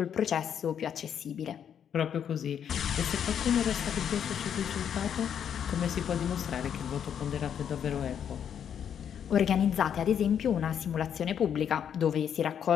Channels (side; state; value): right; quieter; 8.6 dB